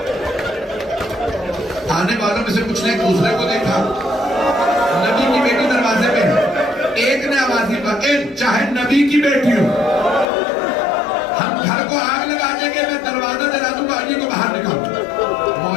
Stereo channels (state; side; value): drops out; right; at 10.2 s